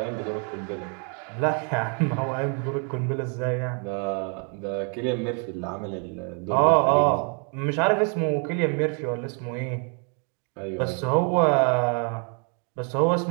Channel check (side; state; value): left; quieter; 39.4 dB